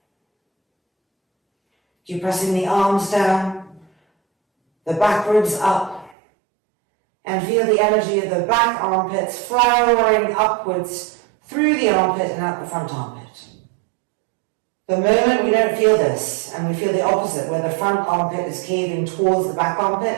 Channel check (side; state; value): left; drops out; at 6.2 s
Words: Keep pressing the arms down, the back ribs up, and feel the energy of the back armpits flowering upwards through the armpit and out the front armpit. The moment we don't feel this, and we feel the opposite, where the front armpit is caving towards the back